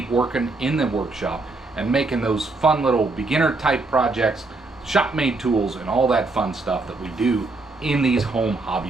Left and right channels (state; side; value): quieter; left; 3.4 dB